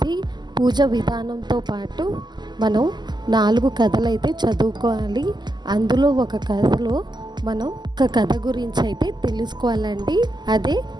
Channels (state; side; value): late; left; 0.21 ms